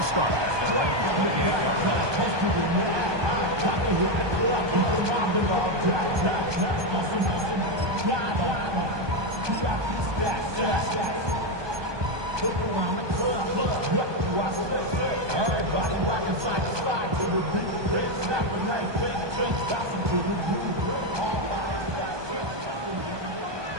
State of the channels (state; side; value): late; left; 1.2 ms